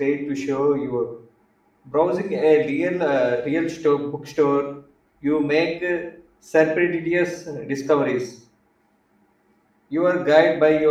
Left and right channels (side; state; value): both; identical; correlation 1.00